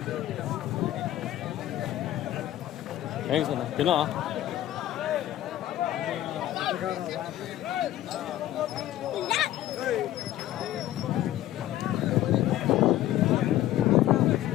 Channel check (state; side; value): quieter; right; 13.6 dB